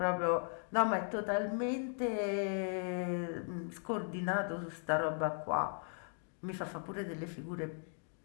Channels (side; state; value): right; silent; 53 dB below the other